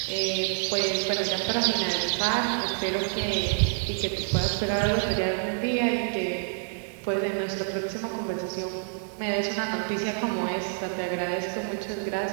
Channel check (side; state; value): left; silent; digital silence